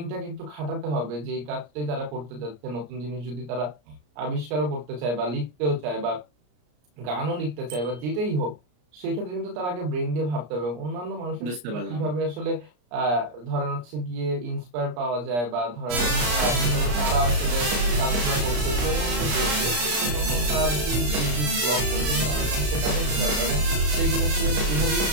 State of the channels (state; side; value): late; left; 33 ms